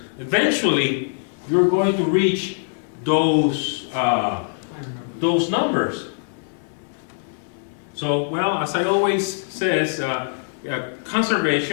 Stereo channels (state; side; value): silent; right; digital silence